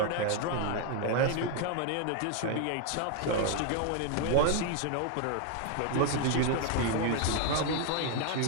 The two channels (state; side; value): different; both; correlation 0.01